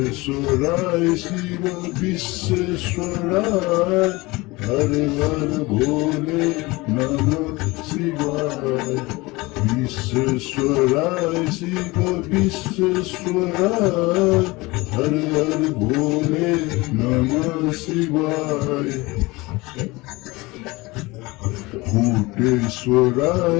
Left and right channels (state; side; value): quieter; right; 22.6 dB